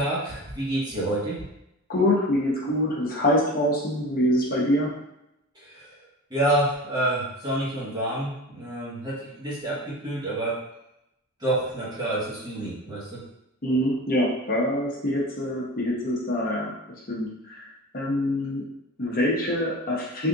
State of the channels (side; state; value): both; normal; correlation 0.33